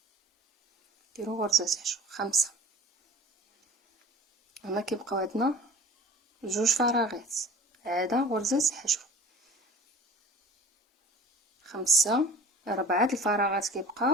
نديرو غرزة حشو 5. هنا كيبقاو عندنا 2 فراغات، عاده غرزة حشو 5. 4 الفراغات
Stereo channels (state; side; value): normal; both; correlation 0.42